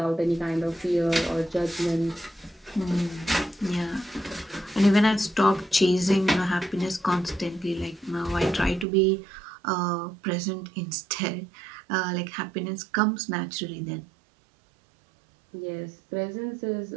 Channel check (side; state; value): left; drops out; at 8.8 s